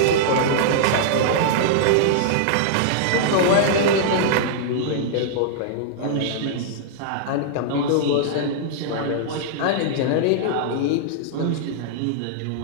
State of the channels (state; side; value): different; both; correlation -0.01